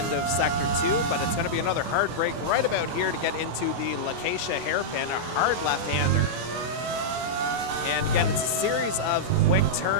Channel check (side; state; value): left; late; 24 ms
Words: of Sector 2, but it's going to be another hard break right about here to get into the Lacacia hairpin, a hard left-hander. And again, it's a series of quick